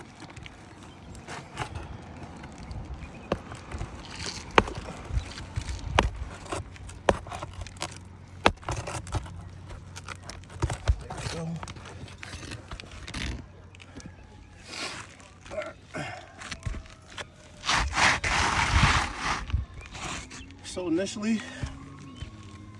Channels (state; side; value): identical; both; correlation 1.00